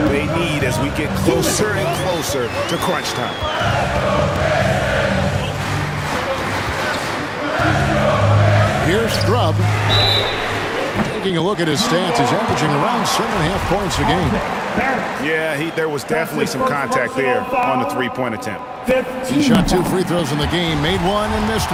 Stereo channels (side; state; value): both; identical; correlation 1.00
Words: they need as we get closer and closer to crunch time. Here's Scrub. Taking a look at his stats, he's averaging around 7.5 points a game. Yeah, there was definitely some contact there on the three-point attempt. He shot 2 free throws in the game, made 1 and missed